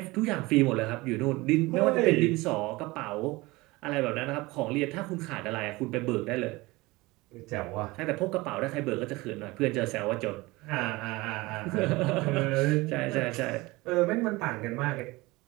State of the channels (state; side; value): quieter; left; 21.9 dB